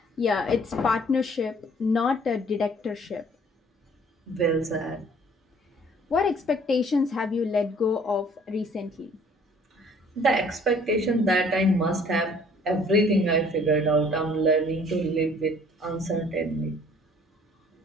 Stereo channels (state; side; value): normal; both; correlation 0.56